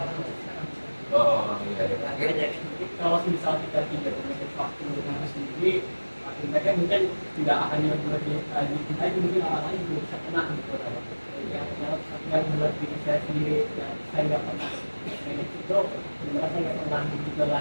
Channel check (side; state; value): both; inverted; correlation -1.00